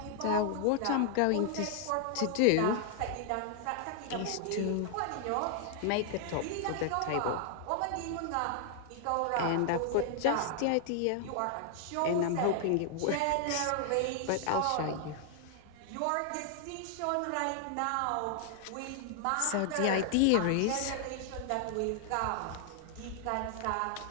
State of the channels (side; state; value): both; different; correlation 0.00